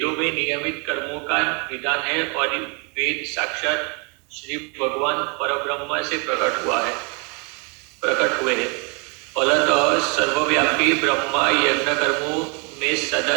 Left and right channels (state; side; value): quieter; left; 33.5 dB